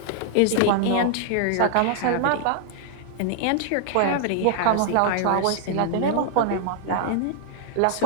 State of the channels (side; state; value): both; different; correlation -0.01